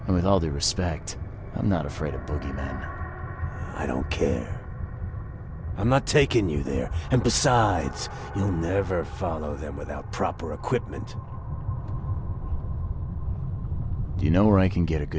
And with all due respect, I'm not afraid of boogeymen. I don't care. I'm not taking you there. And besides, you'll never follow them without proper equipment. Do you know where I can get a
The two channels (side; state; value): both; identical; correlation 1.00